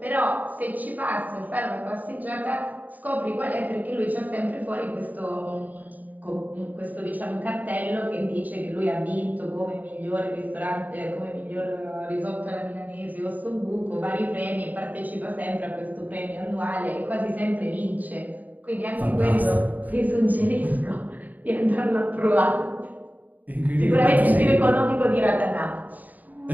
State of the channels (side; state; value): left; late; 0.081 ms